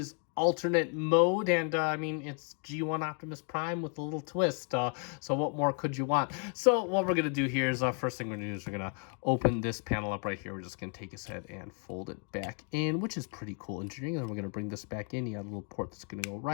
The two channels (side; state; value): right; quieter; 40.0 dB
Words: alternate mode, and I mean, it's G1 Optimus Prime with a little twist, so what more could you want? So what we're gonna do here is, first thing we're gonna do is we're gonna open this panel up right here. We're just gonna take his head and fold it back in, which is pretty cool engineering. Then we're gonna bring this back in. You got a little port that's gonna go